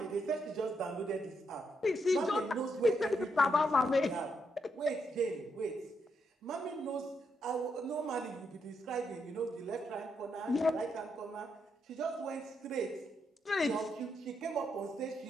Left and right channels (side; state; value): both; normal; correlation 0.80